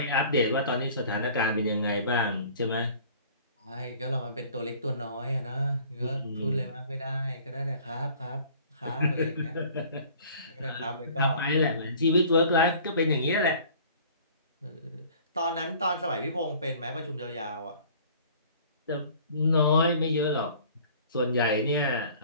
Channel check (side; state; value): both; inverted; correlation -0.50